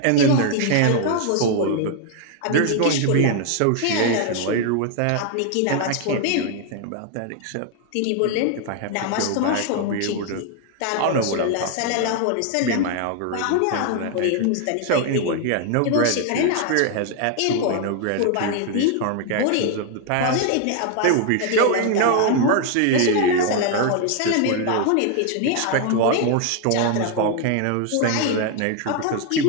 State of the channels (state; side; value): different; both; correlation 0.00